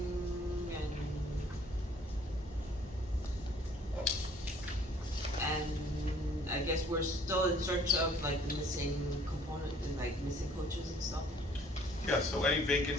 and I guess we're still in search of like the missing component and like missing coaches and stuff. Yeah, so any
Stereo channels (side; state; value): both; normal; correlation 0.58